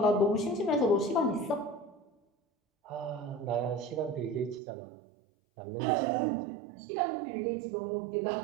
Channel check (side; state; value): left; drops out; at 4.6 s